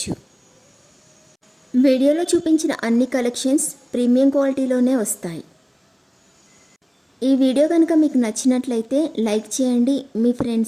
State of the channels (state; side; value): identical; both; correlation 1.00